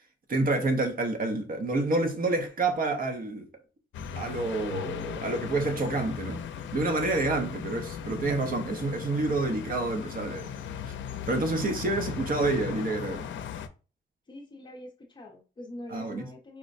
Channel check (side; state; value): both; normal; correlation 0.46